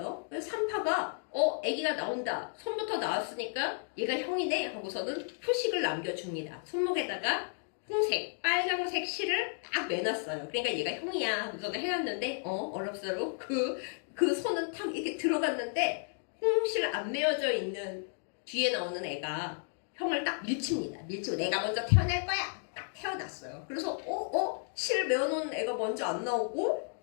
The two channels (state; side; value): silent; right; 56 dB below the other